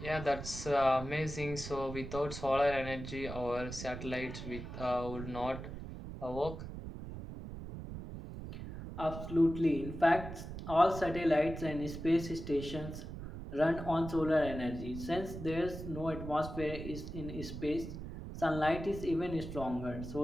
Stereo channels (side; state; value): right; noise; rumble, 9 dB below the sound